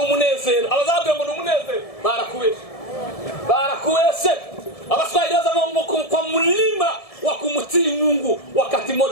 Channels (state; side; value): late; right; 1.7 ms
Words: umunezero. Abazabwira ngo ni umunezero barakubeshe. Abaswahili wazama kwa mlima wa kumtii Mungu wakati